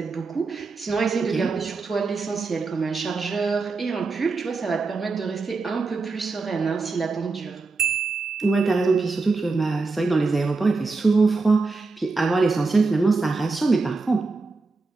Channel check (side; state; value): left; quieter; 3.9 dB